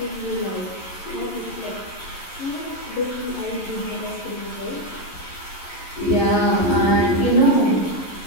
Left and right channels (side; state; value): right; late; 11 ms